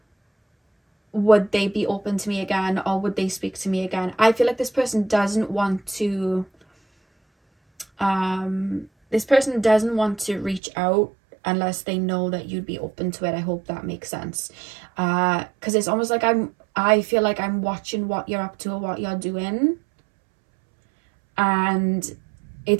would they be open to me again, or would they speak to me again? I feel like this person doesn't want to reach out unless they know that you'd be open to it. I hope that makes sense. Because it's almost like I feel like I'm watching what you're up to or what you're doing. And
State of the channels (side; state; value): left; drops out; at 10.6 s